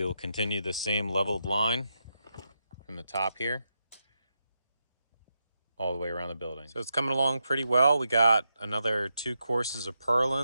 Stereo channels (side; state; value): both; inverted; correlation -0.85